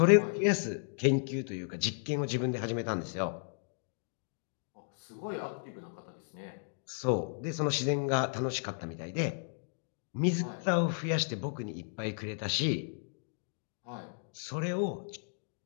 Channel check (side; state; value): right; silent; digital silence